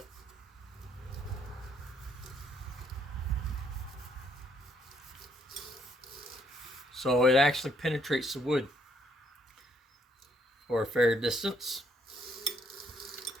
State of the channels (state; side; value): normal; both; correlation 0.70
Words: So it actually penetrates the wood for a fair distance.